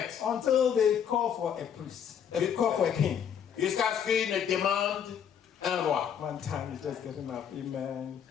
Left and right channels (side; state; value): right; quieter; 8.3 dB